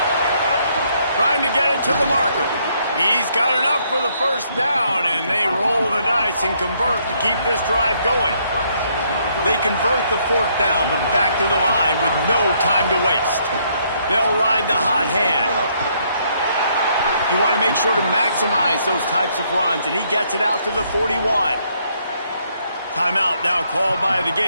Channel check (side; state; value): both; inverted; correlation -0.70